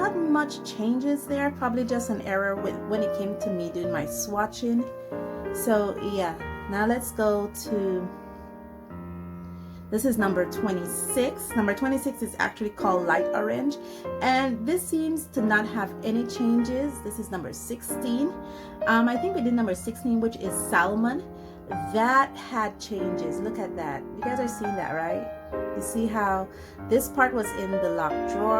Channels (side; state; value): both; identical; correlation 1.00